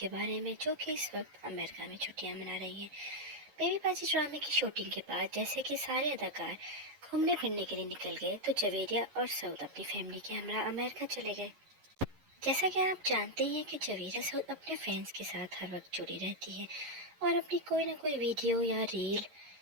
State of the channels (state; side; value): late; left; 11 ms